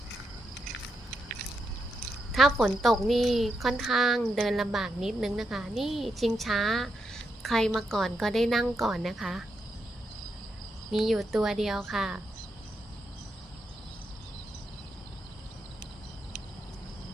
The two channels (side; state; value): both; normal; correlation 0.83